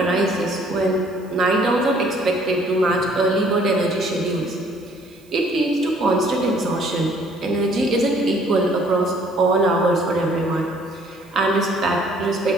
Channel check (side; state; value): right; noise; hiss, 29 dB below the sound